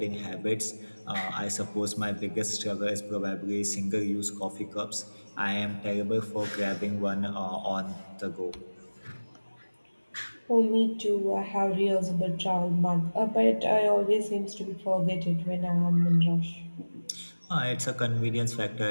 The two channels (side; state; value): both; inverted; correlation -1.00